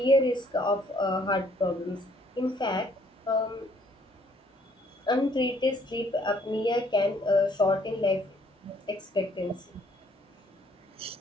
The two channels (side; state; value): both; normal; correlation 0.64